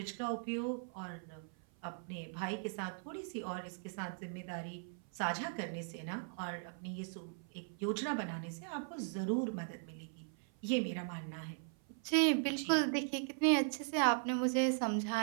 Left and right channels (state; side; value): silent; left; 52 dB below the other